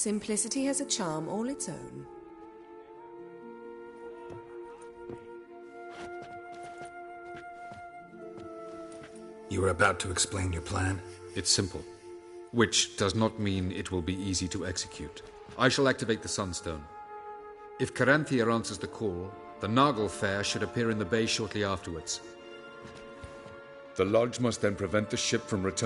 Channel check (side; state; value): both; identical; correlation 1.00